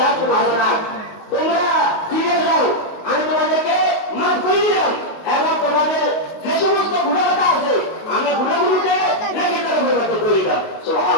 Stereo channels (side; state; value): right; late; 19 ms